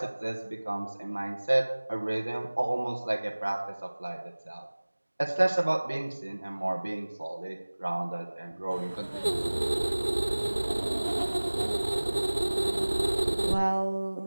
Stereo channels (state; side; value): inverted; both; correlation -1.00